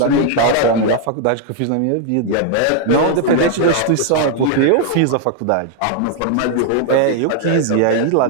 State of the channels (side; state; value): both; different; correlation 0.00